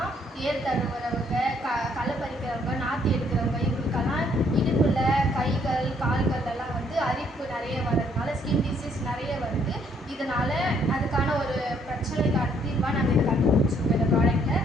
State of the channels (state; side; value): normal; both; correlation 0.67